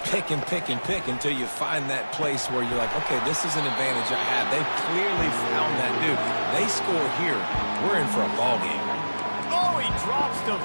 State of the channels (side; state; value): both; inverted; correlation -1.00